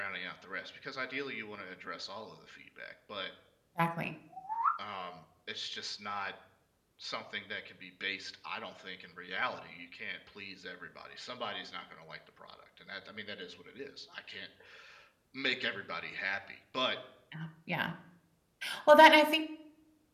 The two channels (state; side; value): identical; both; correlation 1.00